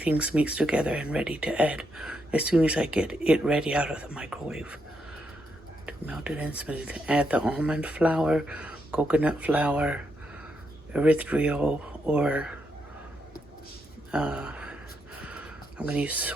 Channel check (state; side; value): normal; both; correlation 0.80